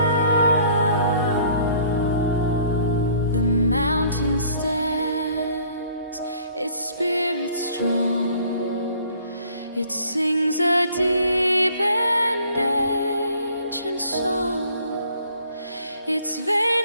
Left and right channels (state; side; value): inverted; both; correlation -0.57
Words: mountain stands, its spirit strong. It sings a deep and ancient song. Its